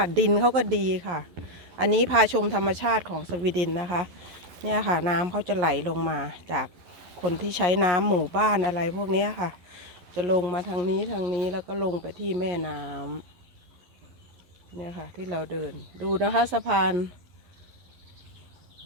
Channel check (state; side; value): late; left; 11 ms